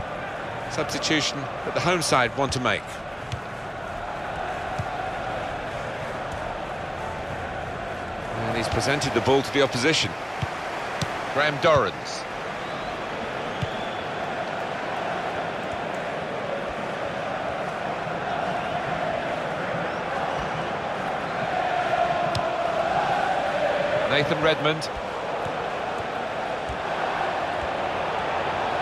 Substitution that the home side want to make. And he's presented the ball to the opposition. Graham Dorrans. Nathan Redmond.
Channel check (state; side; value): identical; both; correlation 1.00